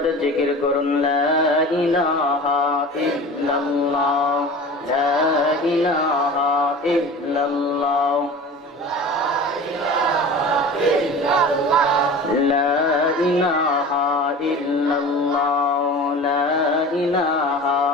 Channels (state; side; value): normal; both; correlation 0.37